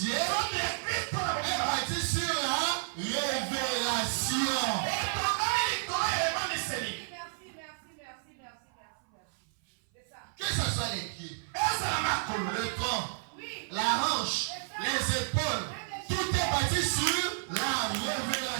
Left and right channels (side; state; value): left; silent; 56 dB below the other